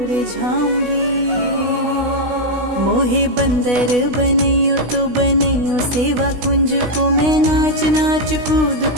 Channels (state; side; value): late; left; 16 ms